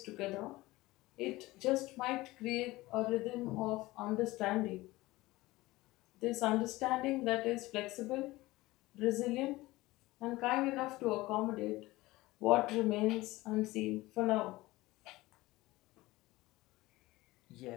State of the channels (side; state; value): right; quieter; 19.3 dB